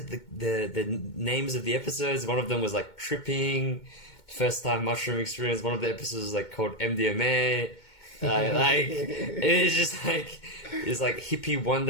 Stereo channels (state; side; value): late; right; 2.2 ms